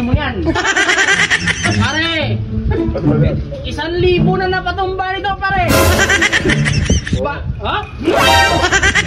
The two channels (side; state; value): both; identical; correlation 1.00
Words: mo yan. Pare! 1,000 na napatumba nito, pare! Ha?